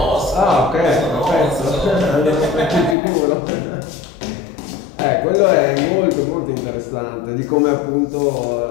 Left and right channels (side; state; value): right; drops out; at 3.0 s